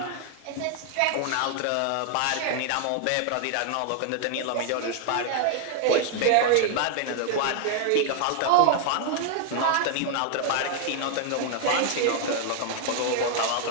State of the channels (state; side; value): different; both; correlation 0.00